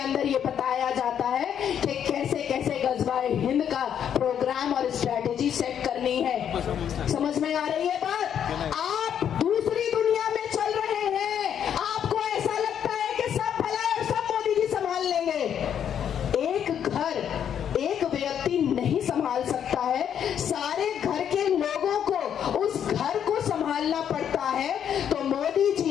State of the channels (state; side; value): quieter; right; 8.9 dB